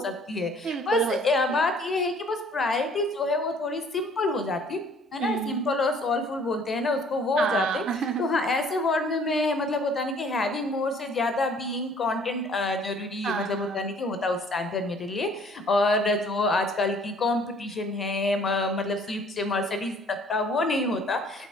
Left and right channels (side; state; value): both; normal; correlation 0.56